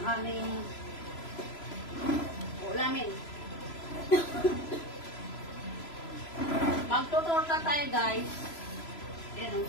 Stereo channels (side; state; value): right; late; 3.0 ms